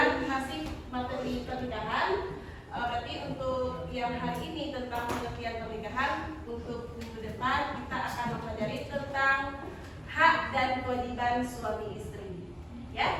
masih materi pernikahan. Berarti untuk yang hari ini tentang pengertian pernikahan, untuk minggu depan kita akan mempelajari tentang hak dan kewajiban suami istri.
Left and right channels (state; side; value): identical; both; correlation 1.00